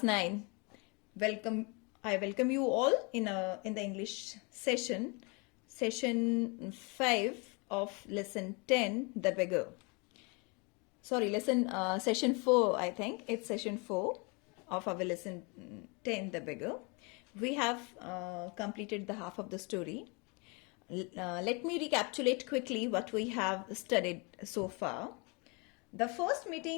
9. Welcome. I welcome you all in the English session 5 of lesson 10, The Beggar. Sorry, session 4, I think. It's session 4 of our lesson 10, The Beggar. We have completed the half of the story. Let me recapitulate quickly what we have studied so far. The first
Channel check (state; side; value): quieter; right; 31.1 dB